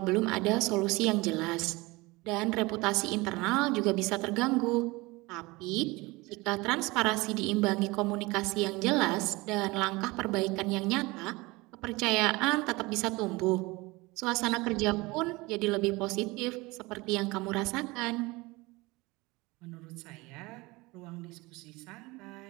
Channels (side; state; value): left; quieter; 22.9 dB